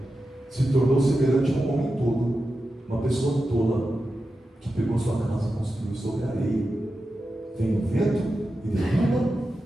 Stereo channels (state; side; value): normal; both; correlation 0.91